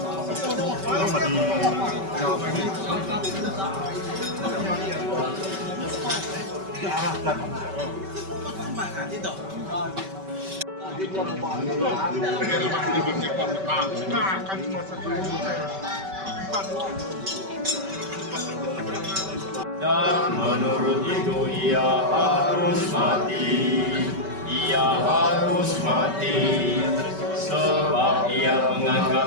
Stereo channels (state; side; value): late; left; 5.2 ms